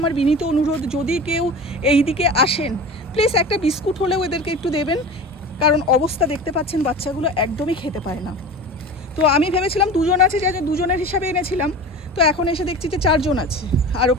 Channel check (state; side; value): normal; both; correlation 0.33